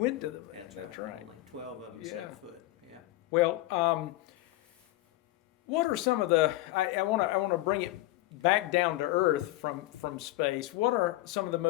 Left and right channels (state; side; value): quieter; right; 17.3 dB